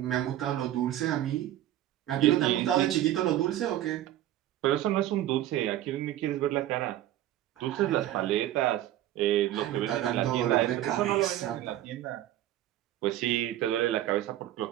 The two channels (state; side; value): quieter; left; 13.3 dB